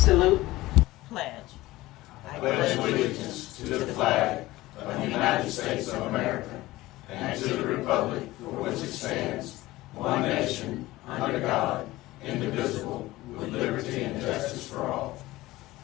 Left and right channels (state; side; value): quieter; right; 18.1 dB